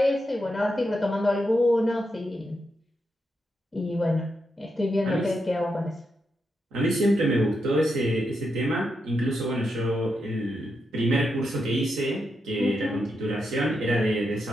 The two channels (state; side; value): normal; both; correlation 0.84